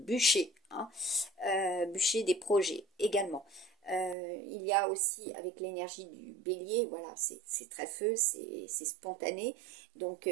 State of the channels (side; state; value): left; drops out; at 4.2 s